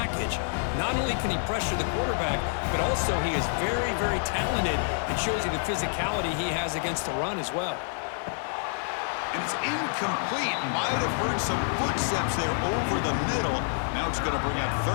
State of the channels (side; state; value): right; silent; 60 dB below the other